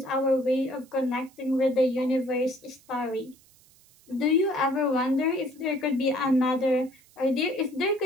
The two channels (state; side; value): noise; right; hiss, 29 dB below the sound